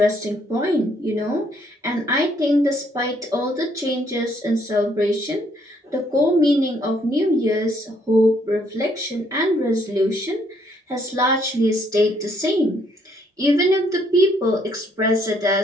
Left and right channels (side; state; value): both; normal; correlation 0.68